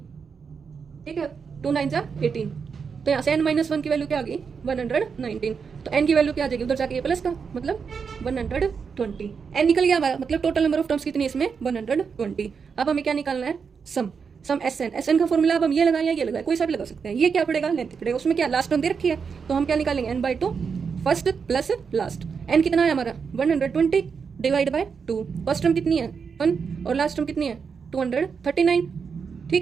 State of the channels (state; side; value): quieter; left; 5.9 dB